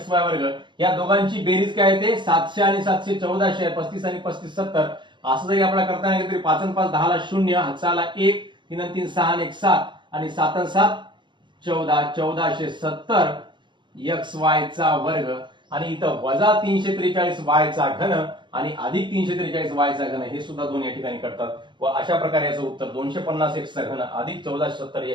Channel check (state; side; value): late; left; 0.23 ms